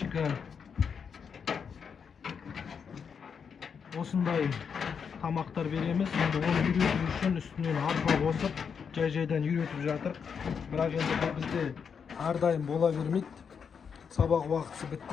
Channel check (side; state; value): right; quieter; 6.6 dB